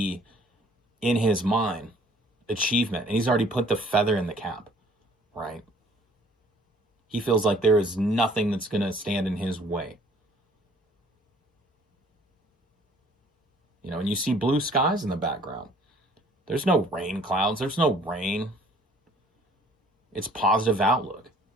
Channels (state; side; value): normal; both; correlation 0.56